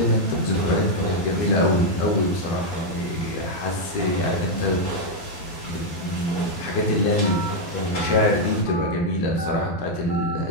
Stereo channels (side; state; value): right; late; 12 ms